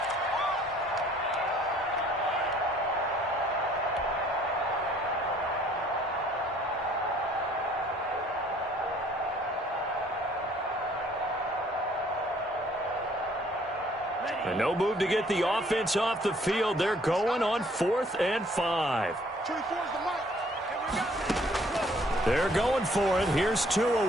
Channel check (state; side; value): normal; both; correlation 0.60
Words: And no move to get the offense off the field. They're going on 4th and 5. They're going for it. Here's Tua